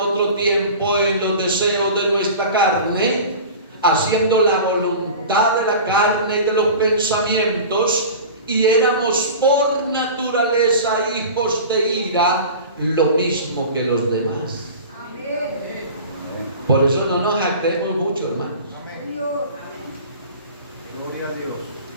tiempo en los deseos de nuestra carne, haciendo la voluntad de la carne y de los pensamientos, y éramos por naturaleza hijos de ira, lo mismo que los demás. Amén. Por eso no nos jactemos mucho, hermanos. Amén. Gloria a Dios.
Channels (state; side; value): inverted; both; correlation -0.37